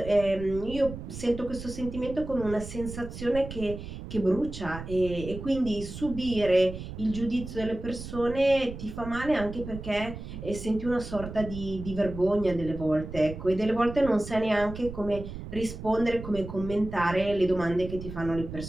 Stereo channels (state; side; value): noise; right; rumble, 10 dB below the sound